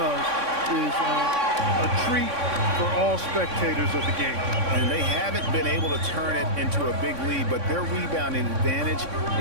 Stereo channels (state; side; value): late; left; 3.6 ms